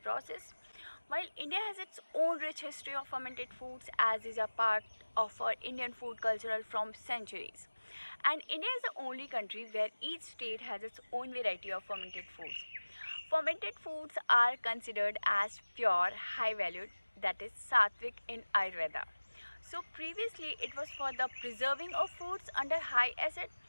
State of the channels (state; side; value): inverted; both; correlation -1.00